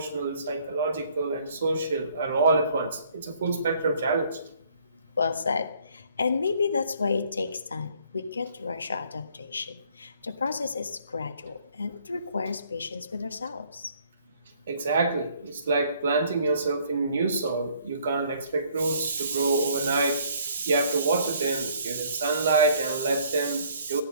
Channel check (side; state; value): both; inverted; correlation -0.62